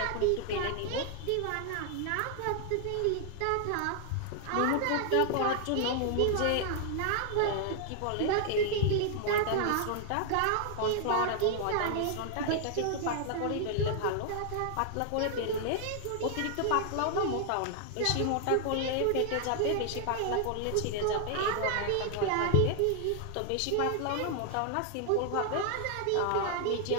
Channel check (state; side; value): different; both; correlation 0.00